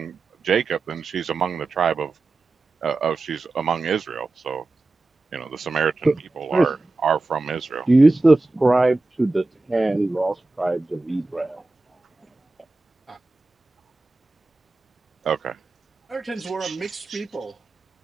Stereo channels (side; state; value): left; quieter; 3.1 dB